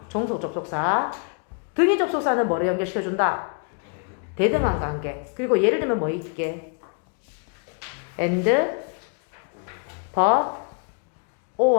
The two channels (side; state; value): right; quieter; 39.5 dB